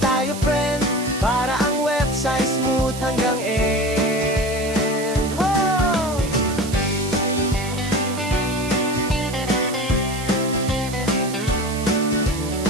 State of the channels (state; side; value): noise; right; hiss, 12 dB below the sound